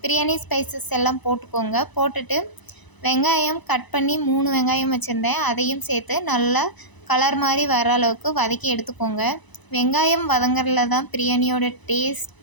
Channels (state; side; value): late; right; 1.0 ms